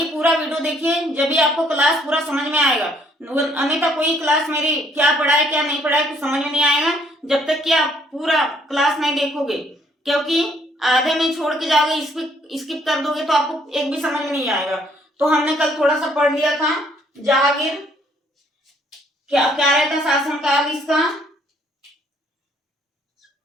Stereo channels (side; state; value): both; normal; correlation 0.65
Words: पूरा वीडियो देखिए, जब भी आपको क्लास पूरा समझ में आएगा। अन्यथा कोई क्लास मेरी क्या पढ़ा है क्या नहीं पढ़ा है कुछ समझ में नहीं आएगा जब तक कि आप पूरा क्लास नहीं देखोगे। क्योंकि आधे में छोड़ के जाओगे, स्किप कर दोगे तो आपको एक भी समझ में नहीं आएगा। तो हमने कल थोड़ा सा पढ़ लिया था जहांगीर। क्या क्या रहता शासनकाल इसका?